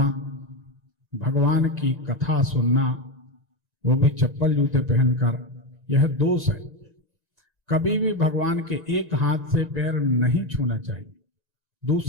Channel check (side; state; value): left; late; 1.9 ms